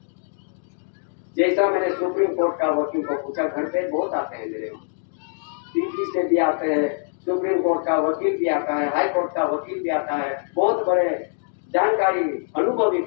जैसा मैंने सुप्रीम कोर्ट का वकील को पूछा, घर पे बहुत आते हैं मेरे वहाँ, दिल्ली से भी आते हैं, सुप्रीम कोर्ट का वकील भी आता है, हाई कोर्ट का वकील भी आता है, बहुत बड़े जानकारी अनुभवी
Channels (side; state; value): right; silent; 63 dB below the other